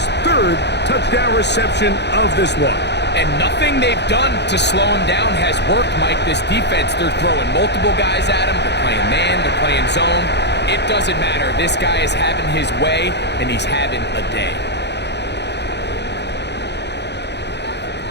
3rd touchdown reception of this one. And nothing they've done to slow him down has worked, Mike. This defense, they're throwing multiple guys at him. They're playing man, they're playing zone. It doesn't matter. This guy is having his way, and he's having a day.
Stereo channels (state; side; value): late; right; 0.50 ms